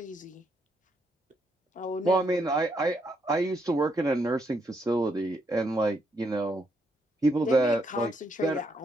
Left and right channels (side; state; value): both; normal; correlation 0.76